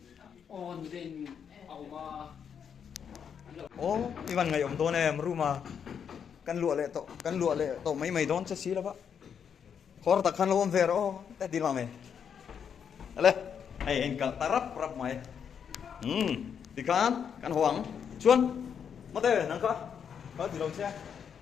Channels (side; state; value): right; quieter; 7.5 dB